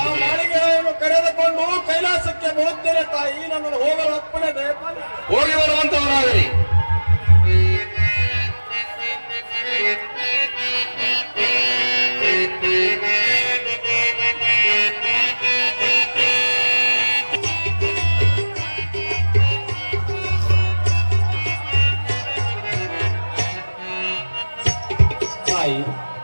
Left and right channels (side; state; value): both; inverted; correlation -1.00